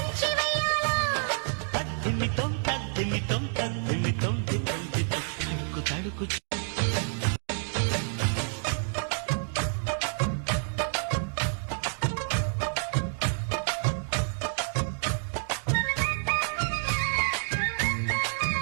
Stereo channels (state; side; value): silent; left; 59 dB below the other